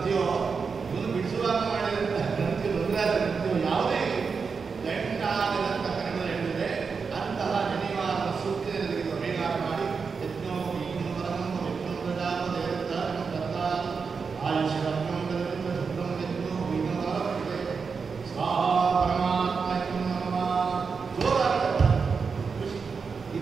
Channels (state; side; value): quieter; left; 5.3 dB